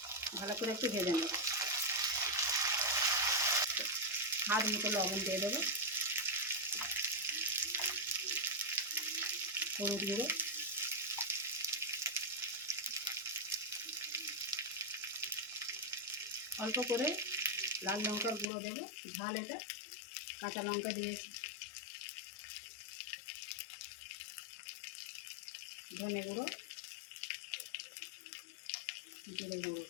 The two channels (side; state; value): right; drops out; at 18.5 s